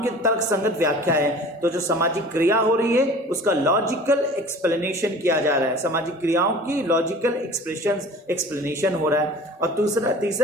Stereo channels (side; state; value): both; normal; correlation 0.43